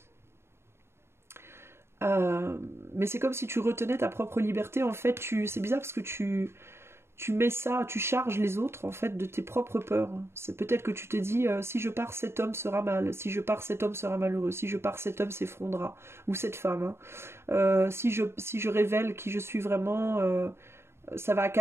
Mais c'est comme si tu retenais ta propre liberté. En fait, c'est bizarre parce que tu mets ça, tu charges les autres en fait de tes propres peurs. C'est peut-être que tu te dis si je pars, cet homme sera mal, si je pars, cet homme sera malheureux, si je pars, cet homme s'effondrera, ou cette femme, hein. Si je révèle qui je suis vraiment, ça va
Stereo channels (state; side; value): late; left; 0.12 ms